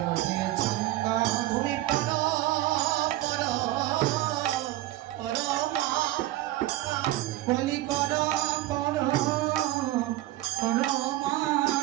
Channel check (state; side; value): quieter; left; 16.1 dB